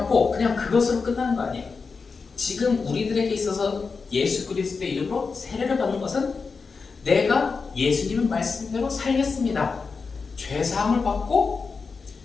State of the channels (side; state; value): right; quieter; 4.8 dB